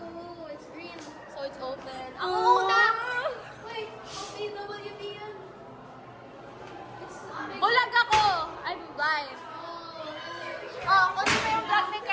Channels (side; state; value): both; identical; correlation 1.00